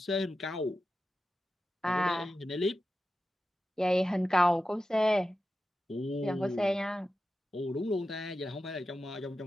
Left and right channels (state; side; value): normal; both; correlation 0.92